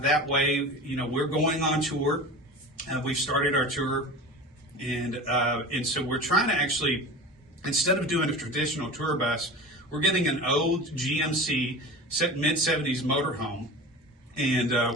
way. We're going on tour. We've started our tour. And so we're trying to actually, instead of doing a traditional tour bus, we're getting an old GMC mid-70s motorhome, and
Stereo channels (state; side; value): normal; both; correlation 0.33